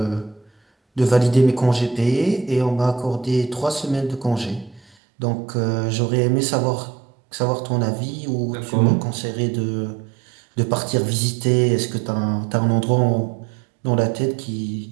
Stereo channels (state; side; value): drops out; left; at 5.0 s